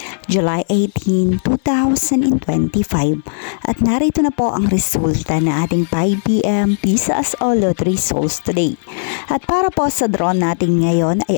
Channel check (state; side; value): silent; right; digital silence